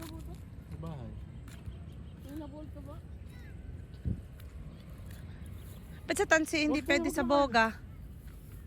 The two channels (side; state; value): both; identical; correlation 1.00